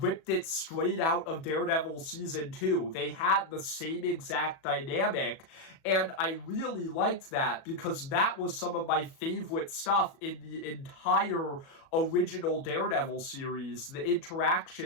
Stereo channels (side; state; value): right; late; 37 ms